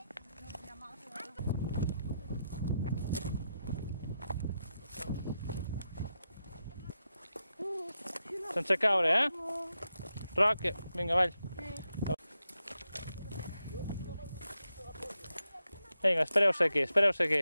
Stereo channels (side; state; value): both; inverted; correlation -0.86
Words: Sense caure, eh? Roc, vinga, avall. Vinga, espereu-se